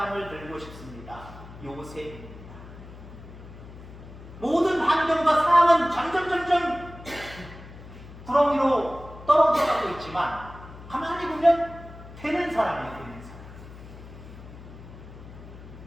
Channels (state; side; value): noise; left; hum, 16 dB below the sound